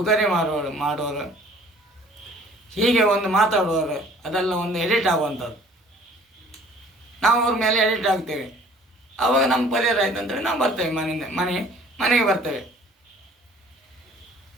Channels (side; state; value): both; normal; correlation 0.53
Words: ಮಾಡುವವರು, ಹೀಗೆ ಒಂದು ಮಾತಾಡುವವರು, ಅದೆಲ್ಲ ಒಂದು ಎಡಿಟ್ ಆಗುವಂಥದ್ದು. ನಾವು ಅವ್ರ ಮೇಲೆ ಎಡಿಟ್ ಆಗ್ತೇವೆ. ಆವಾಗ ನಮ್ಮ ಪರಿಹಾರ ಆಯ್ತು ಅಂತೇಳಿ ನಾವು ಬರ್ತೇವೆ, ಮನೆಗೆ ಬರ್ತೇವೆ.